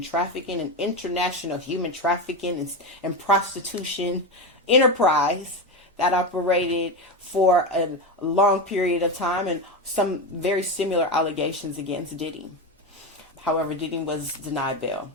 trafficking and international human trafficking and prostitution enterprise that operated for a long period of time, and some very similar allegations against Diddy. However, Diddy was denied bail.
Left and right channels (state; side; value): normal; both; correlation 0.16